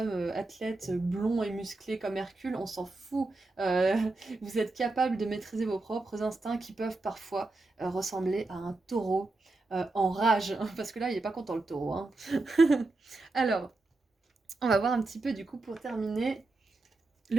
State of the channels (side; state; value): left; quieter; 3.2 dB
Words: athlète blond et musclé comme Hercule, on s'en fout. Euh, vous êtes capable de maîtriser vos propres instincts qui peuvent parfois ressembler à un taureau en rage. Parce que là, il n'est pas content le taureau, hein. Alors, on va voir un petit peu du coup pour terminer